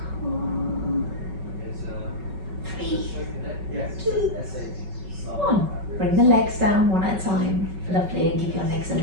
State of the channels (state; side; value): late; left; 5.3 ms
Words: Cool. 3, 2, 1. Bring the legs down one at a time. Lovely, and give your legs a